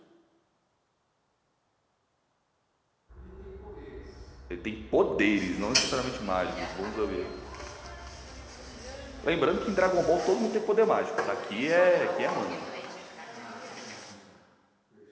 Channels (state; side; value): identical; both; correlation 1.00